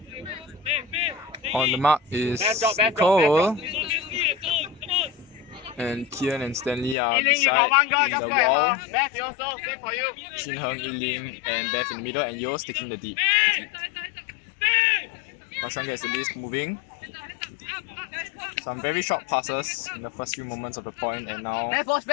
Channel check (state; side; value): drops out; right; at 7.0 s